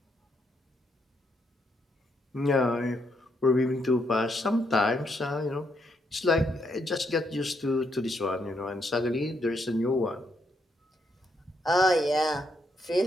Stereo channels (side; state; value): both; normal; correlation 0.77